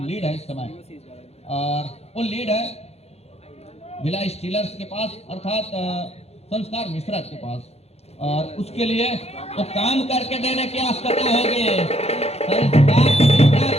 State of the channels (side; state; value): right; late; 0.30 ms